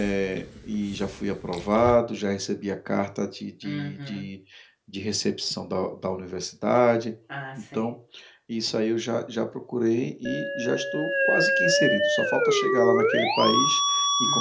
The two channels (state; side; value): identical; both; correlation 1.00